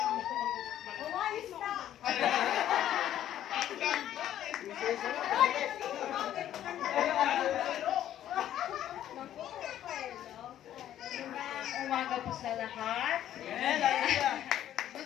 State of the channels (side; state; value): right; quieter; 11.6 dB